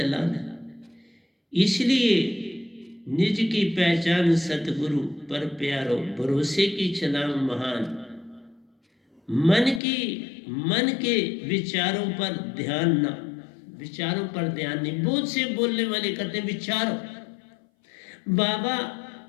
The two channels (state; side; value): drops out; right; at 9.8 s